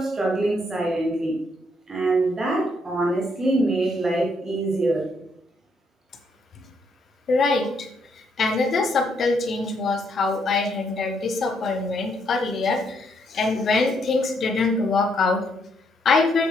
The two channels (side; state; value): both; normal; correlation 0.73